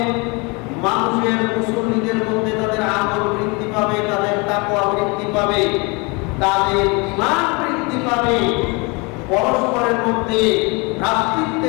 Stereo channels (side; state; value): right; quieter; 28.9 dB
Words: মানুষের, মুসল্লিদের মধ্যে তাদের আমল বৃদ্ধি পাবে, তাদের তাকওয়া বৃদ্ধি পাবে, তাদের ঈমান বৃদ্ধি পাবে, পরস্পরের মধ্যে